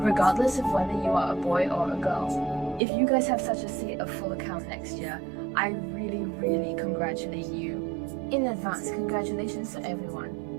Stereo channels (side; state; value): left; drops out; at 2.8 s